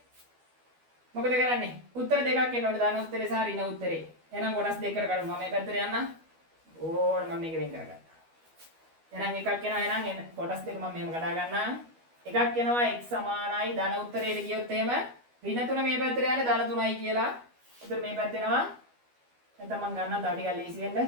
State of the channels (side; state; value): left; late; 12 ms